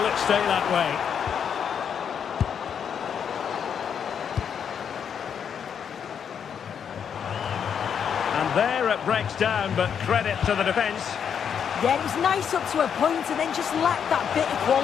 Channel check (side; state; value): right; quieter; 7.7 dB